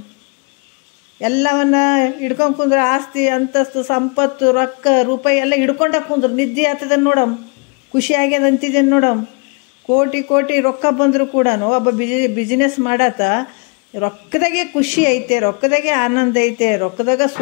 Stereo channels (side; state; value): right; quieter; 33.0 dB